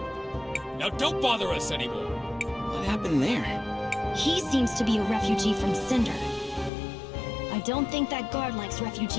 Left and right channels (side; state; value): right; drops out; at 6.7 s